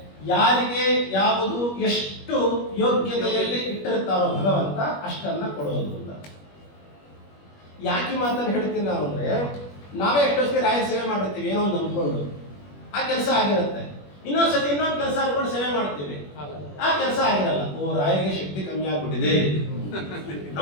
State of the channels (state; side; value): late; right; 21 ms